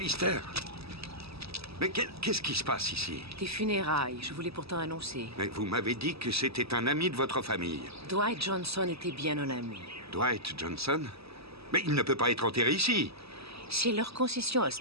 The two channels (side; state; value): left; late; 0.78 ms